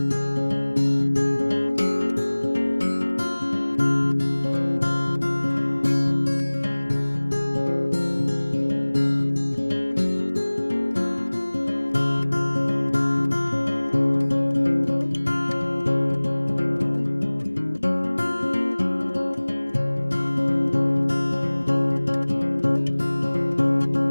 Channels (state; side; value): inverted; both; correlation -1.00